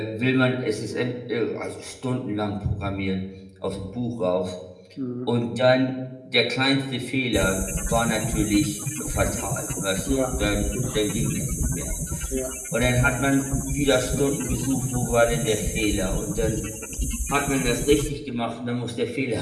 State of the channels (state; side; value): identical; both; correlation 1.00